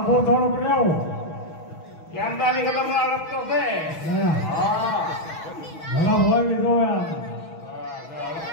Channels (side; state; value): right; late; 6.2 ms